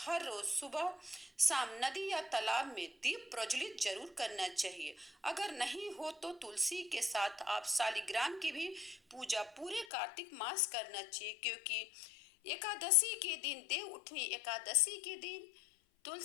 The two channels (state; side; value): drops out; right; at 9.9 s